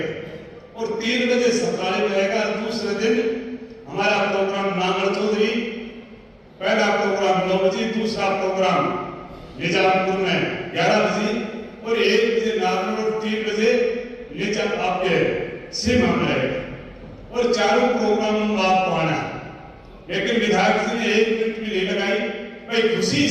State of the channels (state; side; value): identical; both; correlation 1.00